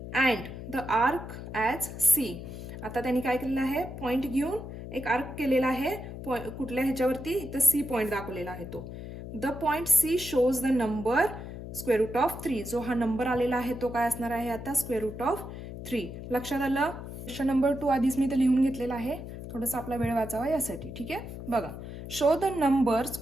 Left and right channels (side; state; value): left; noise; hum, 10 dB below the sound